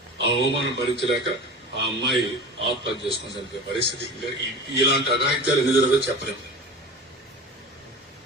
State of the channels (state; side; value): normal; both; correlation 0.33